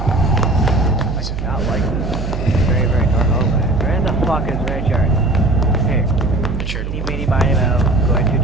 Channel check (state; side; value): noise; right; hum, 5 dB below the sound